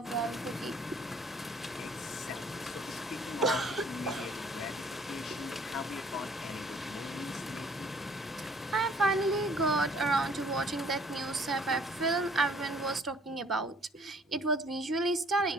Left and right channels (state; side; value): normal; both; correlation 0.57